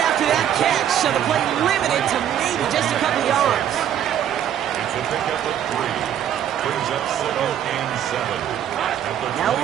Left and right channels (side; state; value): left; quieter; 10.1 dB